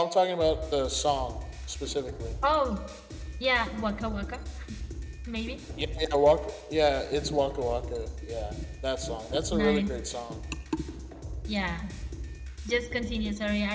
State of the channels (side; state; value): both; identical; correlation 1.00